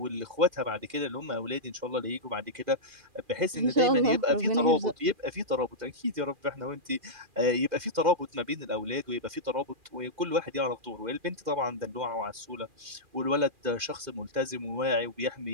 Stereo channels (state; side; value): late; left; 2.4 ms